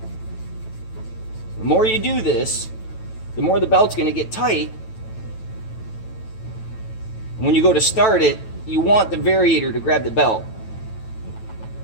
The more you do this, the more the belt's going to get tight. And when you go to start it, you want the variator to grab the belt.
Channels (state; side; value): late; right; 9.1 ms